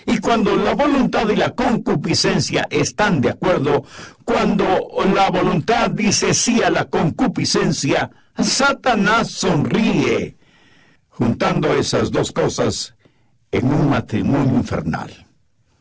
Y cuando la voluntad y la concupiscencia están de acuerdo, cuando la voluntad dice sí a la concupiscencia, Satanás sonríe, juntando esas dos cosas en un matrimonio infernal.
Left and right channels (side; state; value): both; identical; correlation 1.00